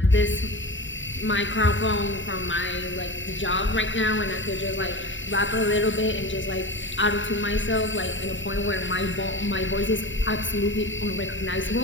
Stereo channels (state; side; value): late; right; 0.55 ms